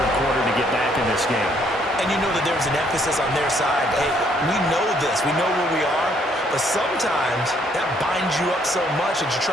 quarter to get back in this game. And you know that there's an emphasis on their side. Hey, we know this. We know where we are. But sometimes that binds you up so much that you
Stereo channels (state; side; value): normal; both; correlation 0.67